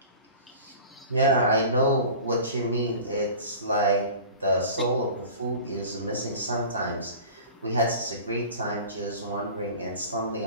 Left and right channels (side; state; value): both; inverted; correlation -0.39